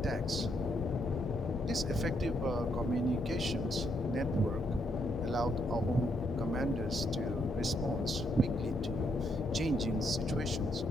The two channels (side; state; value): both; normal; correlation 0.75